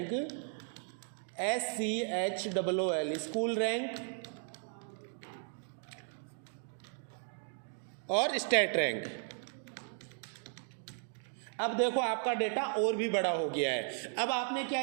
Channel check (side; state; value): left; silent; 54 dB below the other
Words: SCHOOL school rank और स्टेट रैंक। अब देखो आपका डेटा और भी बड़ा हो गया है। अब आपने क्या